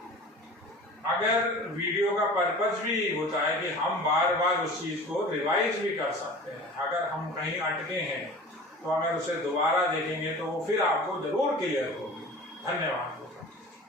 अगर वीडियो का पर्पज भी होता है कि हम बार बार उस चीज को रिवाइज भी कर सकते हैं, अगर हम कहीं अटके हैं तो अगर उसे दोबारा देखेंगे तो वो फिर आपको जरूर क्लियर होगी। धन्यवाद।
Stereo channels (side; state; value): both; normal; correlation 0.39